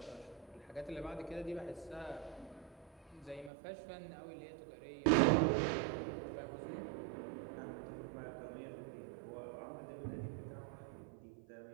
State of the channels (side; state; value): left; drops out; at 3.5 s